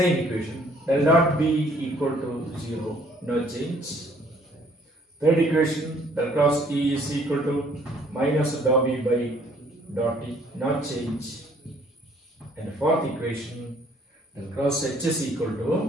equation, del dot B equal to 0, no change. Third equation, del cross E is equal to minus dot B by dot T, no change. And fourth equation, del cross H is equal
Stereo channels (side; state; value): both; normal; correlation 0.61